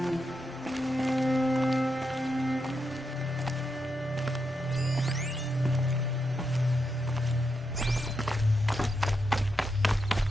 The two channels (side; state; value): both; normal; correlation 0.84